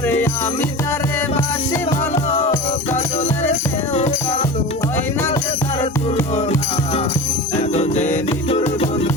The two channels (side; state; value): both; normal; correlation 0.31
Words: আমি তারে বাসি ভালো কাজলের চেয়েও কালো হয় না যে তার তুলনা এততে নিঠুর